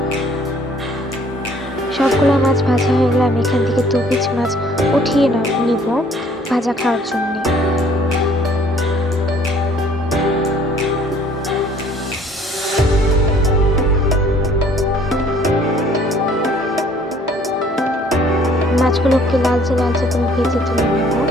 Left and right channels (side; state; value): both; normal; correlation 0.57